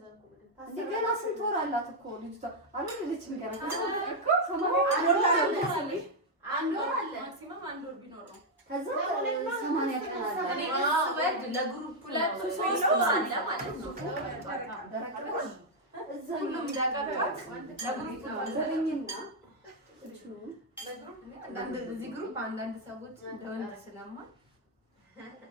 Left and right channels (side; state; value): both; normal; correlation -0.01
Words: ገና ስንት ወር አላት እኮ ልጅቷ? አልወለደችም ገና። አንድ ወር አለ ማክሲመም አንድ ወር ቢኖር ነው። ከዛ 80 ቀን አለ። እኔ ስወድ ለግሩፕ 2-3 ወር አለ ማለት ነው። ሁሉም ዳቀባት ለግሩፕ ነው ዘረኝና እዚህ ግሩፕ አንዳንድ ሰዎች እንደወንድ ስለማ